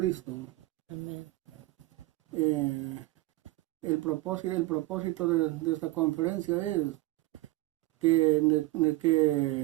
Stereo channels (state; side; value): quieter; left; 19.3 dB